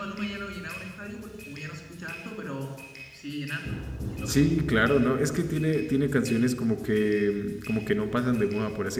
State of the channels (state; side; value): identical; both; correlation 1.00